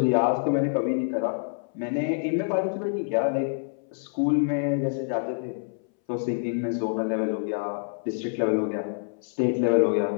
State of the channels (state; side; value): silent; right; 60 dB below the other